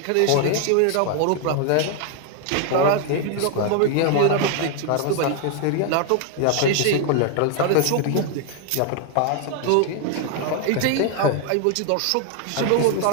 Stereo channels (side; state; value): both; different; correlation 0.00